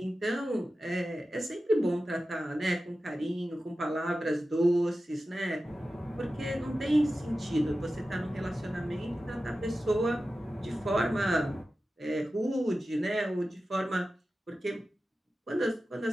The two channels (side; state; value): both; normal; correlation 0.93